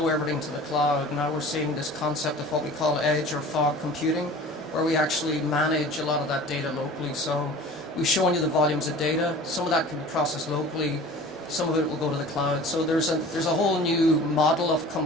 everything to the cloud. Now we're seeing this concept of what we call edge or fog computing, where we actually manage a lot of that data locally. So we've shown you the volumes of data. Some of that can be processed locally, some of it will go to the cloud. So there's a whole new model of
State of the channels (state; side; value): normal; both; correlation 0.42